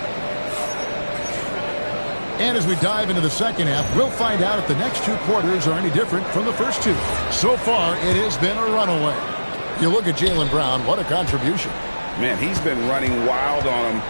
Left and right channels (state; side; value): inverted; both; correlation -1.00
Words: And as we dive into the second half, we'll find out if the next two quarters are any different from the first two. So far, it has been a runaway. You look at Jaylen Brown, what a contribution. Man, he's been running wild on him